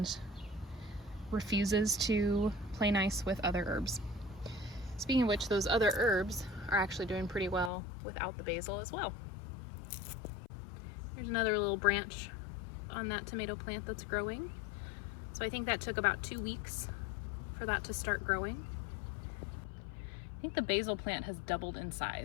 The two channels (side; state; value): right; drops out; at 7.7 s